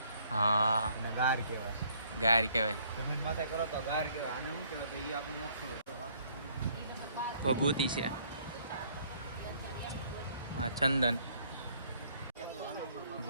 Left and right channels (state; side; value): inverted; both; correlation -0.63